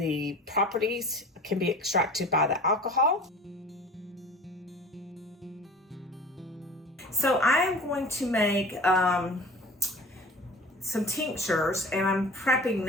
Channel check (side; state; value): both; normal; correlation 0.42